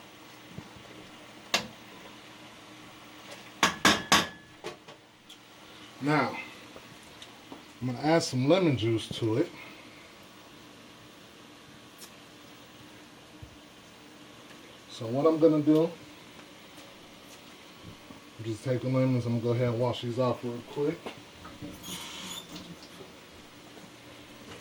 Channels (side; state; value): both; identical; correlation 1.00